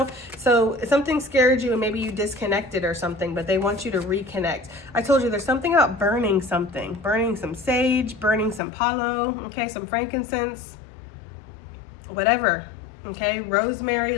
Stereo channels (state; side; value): drops out; right; at 8.6 s